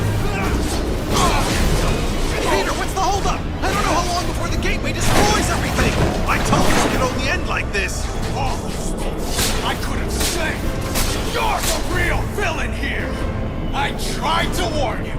Peter, what's the holdup? I don't know how long before the gateway destroys everything! I told you it could only end like this! I could have said, you're the real villain here! I tried to warn you,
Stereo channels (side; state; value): both; identical; correlation 1.00